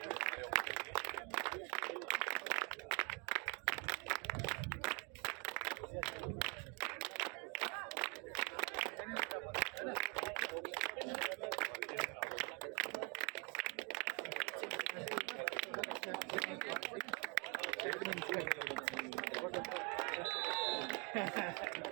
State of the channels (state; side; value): quieter; left; 33.2 dB